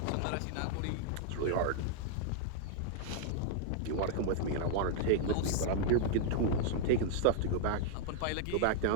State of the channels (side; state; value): both; different; correlation -0.01